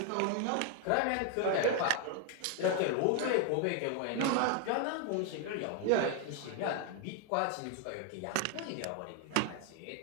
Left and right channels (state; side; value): different; both; correlation 0.01